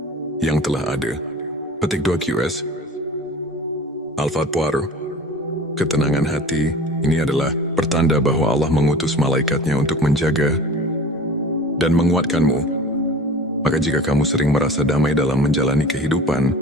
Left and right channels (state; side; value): normal; both; correlation 0.40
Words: yang telah ada. Petik 2 QS Al-Fatwar. Ketenangan hati ini adalah pertanda bahwa Allah mengutus malaikatnya untuk menjaga dan menguatkanmu. Maka jika kamu sering merasa damai dalam menjalani kehidupan,